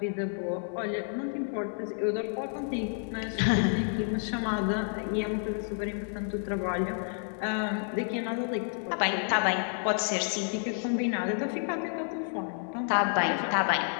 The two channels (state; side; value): silent; right; 58 dB below the other